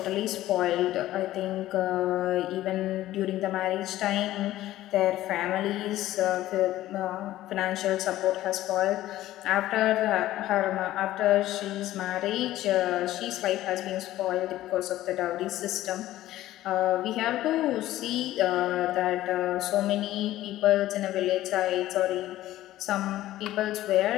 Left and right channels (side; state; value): right; quieter; 14.8 dB